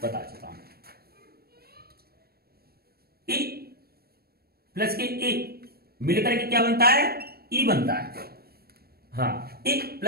बता चुका हूं। ई प्लस के ए मिलकर के क्या बनता है, ई बनता है। हाँ, ई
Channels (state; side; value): late; left; 0.45 ms